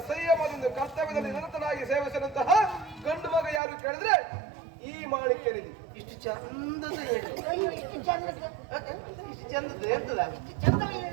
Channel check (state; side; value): drops out; left; at 3.6 s